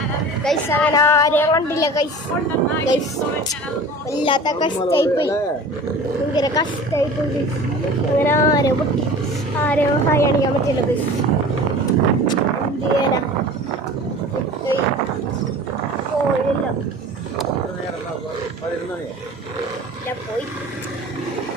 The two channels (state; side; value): normal; both; correlation 0.39